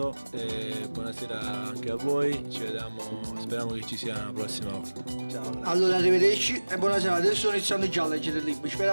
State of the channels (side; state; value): both; inverted; correlation -1.00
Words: e buonasera anche a voi, ci vediamo, speriamo che ci sia la prossima volta. Ciao. Allora arrivederci e buonasera, adesso sto iniziando già a leggere il libro,